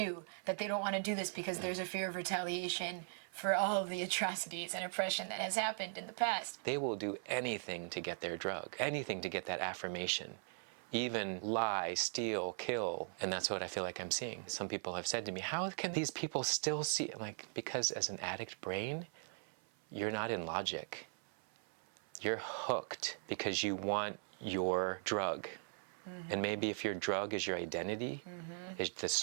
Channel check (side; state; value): left; silent; 51 dB below the other